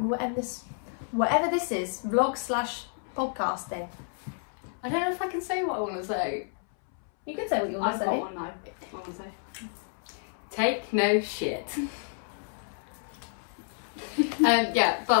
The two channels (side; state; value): right; silent; 58 dB below the other